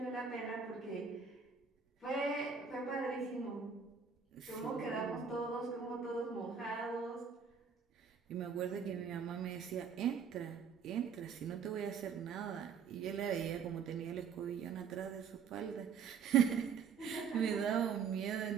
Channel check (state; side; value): quieter; left; 6.3 dB